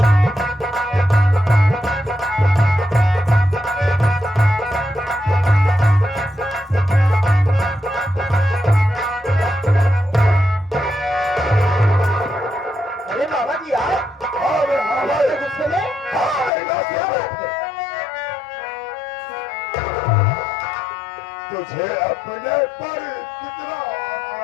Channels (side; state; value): right; drops out; at 16.5 s